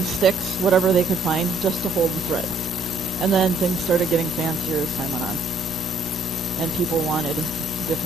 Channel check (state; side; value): normal; both; correlation 0.66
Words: sticks, whatever they could find, just to hold the thread. And then things started getting fancier as time went on. And people wanted